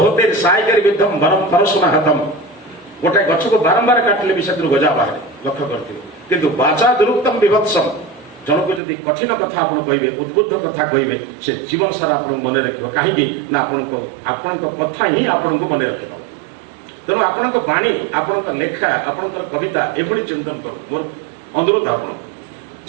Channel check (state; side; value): drops out; left; at 8.8 s